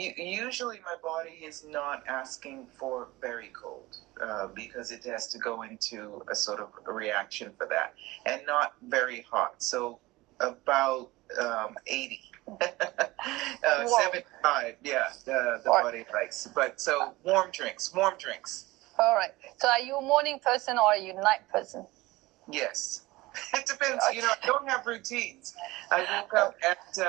my body is not asking for very cold because it has to go into a sort of a reaction for that, and not very hot. So about 80. 75. Yeah, the body likes. But so warm drinks. All right. So are you a morning person or are you a night person? Yes. It depends. You know, I don't have routines. I woke up at.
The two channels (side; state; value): left; quieter; 20.1 dB